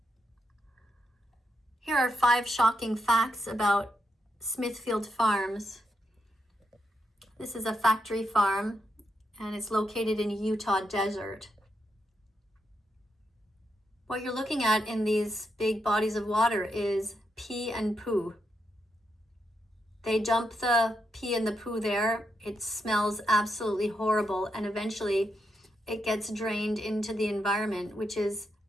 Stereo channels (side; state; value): both; normal; correlation 0.82